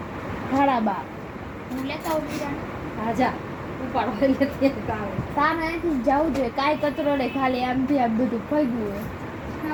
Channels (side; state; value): both; identical; correlation 1.00